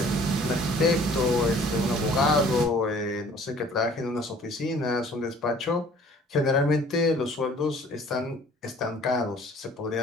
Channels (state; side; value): normal; both; correlation 0.53